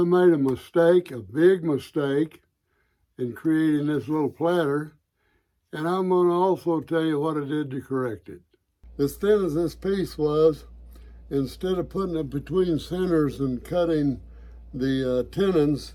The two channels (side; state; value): both; identical; correlation 1.00